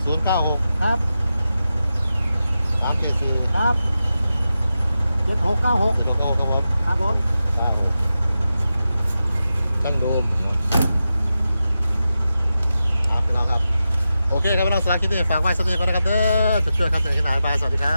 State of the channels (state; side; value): inverted; both; correlation -0.91